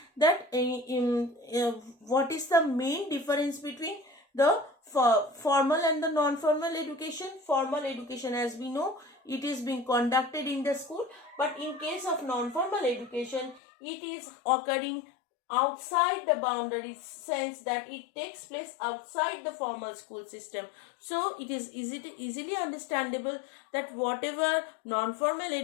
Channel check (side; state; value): right; drops out; at 13.6 s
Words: that what is the main difference between the formal and the non-formal education. Formal education, as we know, it is being conducted in the school, but in case of non-formal education, it is occurring outside the boundary, sense that it takes place outside the formal school system. So it is easily understandable that whatever non-formal